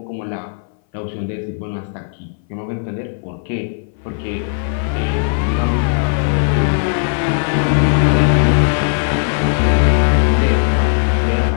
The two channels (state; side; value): silent; right; 60 dB below the other